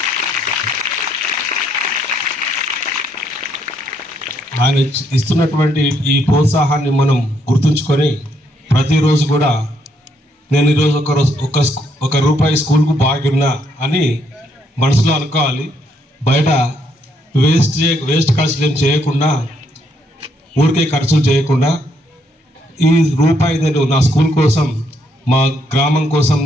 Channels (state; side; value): normal; both; correlation 0.73